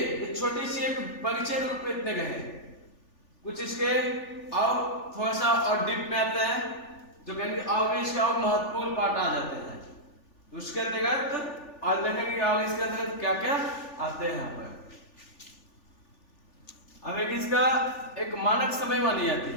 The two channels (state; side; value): late; right; 3.4 ms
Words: छोटी सी एक परिचय रूप में इतने गए, कुछ इसके और थोड़ा सा और डीप में आते हैं, जो कहेंगे और भी इसका और महत्वपूर्ण पार्ट आ जाते हैं। तो उसके अंतर्गत और देखेंगे और इसके अंतर्गत क्या क्या आते हैं यहाँ पर। अब एक इसका एक मानक समय मानी जाती